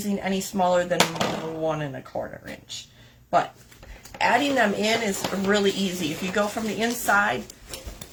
any smaller than 1 1/4 inch. But adding them in is really easy. If you go from the inside,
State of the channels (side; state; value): both; identical; correlation 1.00